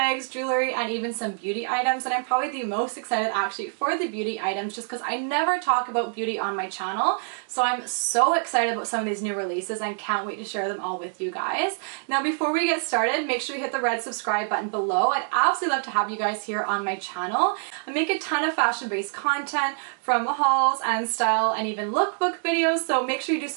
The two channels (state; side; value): silent; left; 61 dB below the other